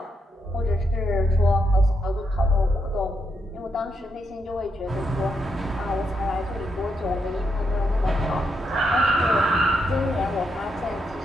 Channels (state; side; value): normal; both; correlation 0.80